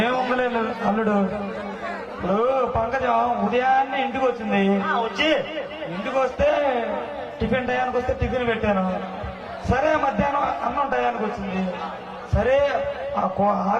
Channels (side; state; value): both; identical; correlation 1.00